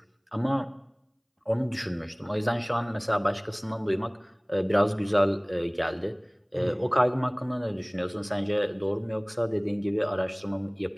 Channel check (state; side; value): identical; both; correlation 1.00